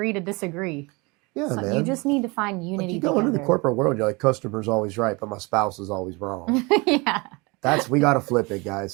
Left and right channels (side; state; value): left; quieter; 26.6 dB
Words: to disagree. Yeah, man. You just need to find unity. Like, you go into the corporate world, you're like, customer's always right, but my spouse is always wrong. Yeah. We got to flip it,